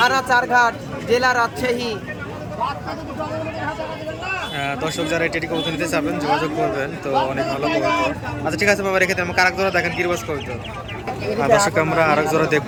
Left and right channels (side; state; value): both; identical; correlation 1.00